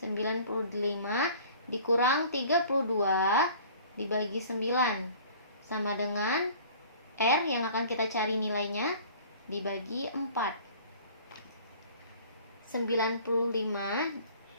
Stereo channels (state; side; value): inverted; both; correlation -0.48